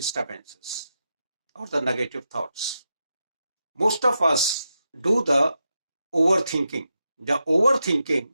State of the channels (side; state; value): both; inverted; correlation -0.87